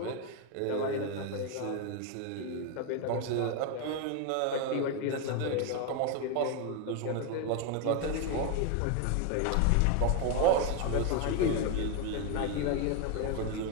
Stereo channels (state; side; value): different; both; correlation 0.01